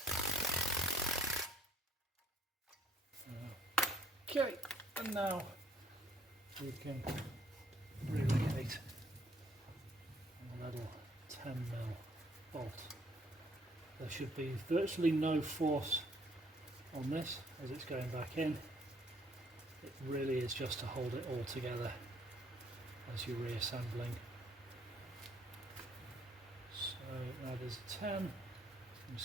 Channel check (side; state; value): both; normal; correlation 0.64